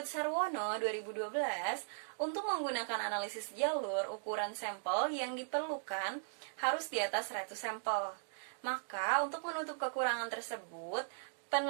Sarwono 2012, untuk menggunakan analisis jalur, ukuran sampel yang diperlukan harus di atas 100 sampel. Maka, untuk menutup kekurangan tersebut,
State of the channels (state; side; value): silent; left; digital silence